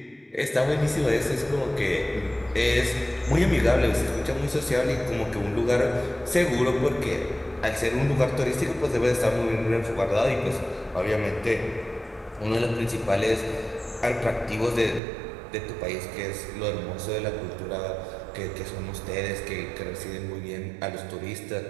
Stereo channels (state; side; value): drops out; left; at 15.0 s